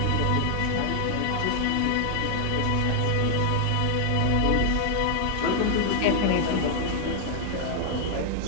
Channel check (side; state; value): both; different; correlation 0.00